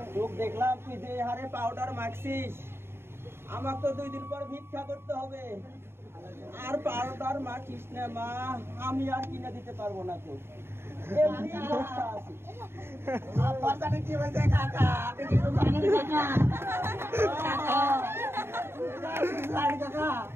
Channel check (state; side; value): late; left; 0.11 ms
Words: লোক দেখলাম তুই যে হারে পাউডার মাখছিস আমাকে তো 2 দিন পর ভিক্ষা করতে হবে আর পাউডার মাখিস না মা আমি আর কিনে দিতে পারবো না তো এমনি অবস্থা আছে আপনার কি বলছে কাকা আপনি কি জানেন কাকা